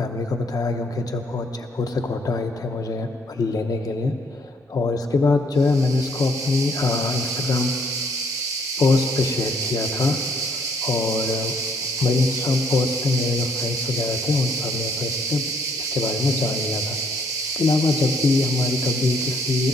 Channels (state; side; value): normal; both; correlation 0.66